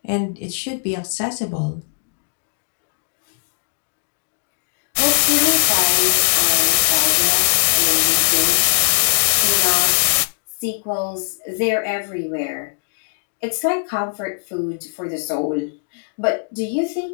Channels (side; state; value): right; silent; digital silence